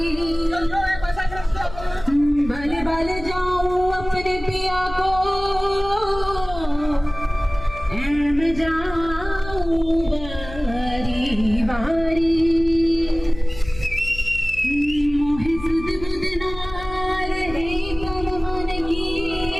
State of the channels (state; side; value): noise; left; hum, 13 dB below the sound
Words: भले भले जाऊं अपने पिया को मैं जाऊं बारी बारी मोहे सुध बुध ना रहे तन मन की